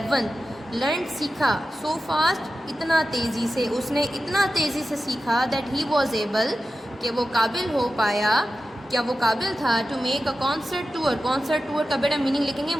Learned سیکھا، so fast اتنا تیزی سے، اس نے اتنا تیزی سے سیکھا that he was able کہ وہ قابل ہو پایا، کیا وہ قابل تھا to make a concert tour. Concert tour کا بیٹا میننگ لکھیں گے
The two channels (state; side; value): normal; both; correlation 0.92